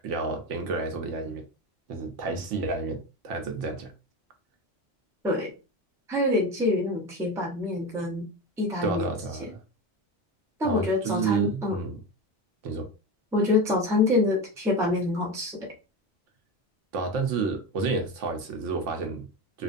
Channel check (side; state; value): both; normal; correlation 0.22